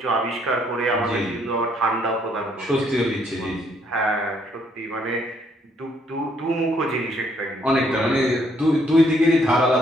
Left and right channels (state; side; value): normal; both; correlation 0.69